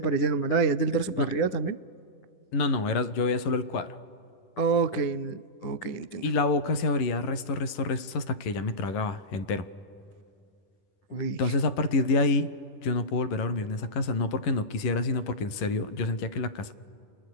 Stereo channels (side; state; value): right; late; 10 ms